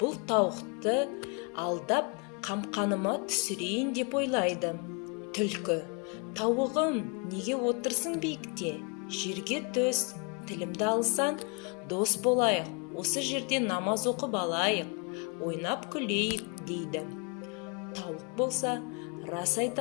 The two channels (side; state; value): right; quieter; 33.5 dB